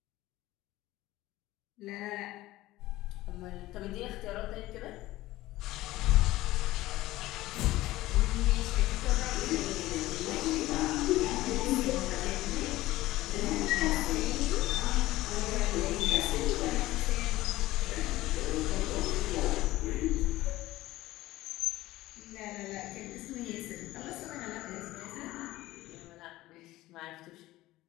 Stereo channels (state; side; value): quieter; right; 17.0 dB